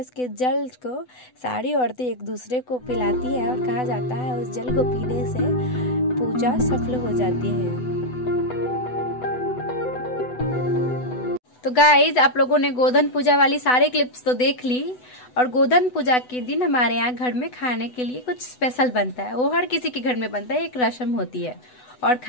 के जल को सारी औरतें एक दूसरे को पिलाती है और कहा जाता है उस जल को पीने से पूजा सफल हो जाती है। तो गाइज आप लोगों ने गोधन पूजा वाली सारे क्लिप्स तो देख ली। और गोधन पूजा के दिन हमारे यहाँ घर में खाने के लिए कुछ स्पेशल बनता है, वो हर किसी के घर में बनता है, एक रस्म होती है। और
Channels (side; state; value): right; late; 8.0 ms